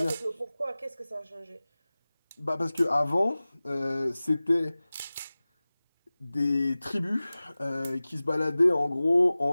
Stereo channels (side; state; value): both; inverted; correlation -0.98